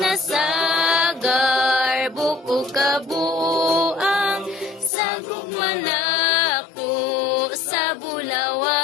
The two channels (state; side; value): drops out; right; at 4.9 s